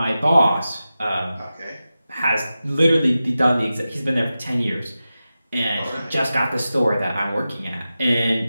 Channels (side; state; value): both; inverted; correlation -0.93